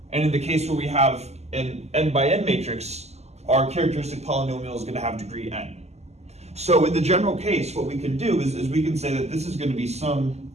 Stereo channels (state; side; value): late; left; 0.32 ms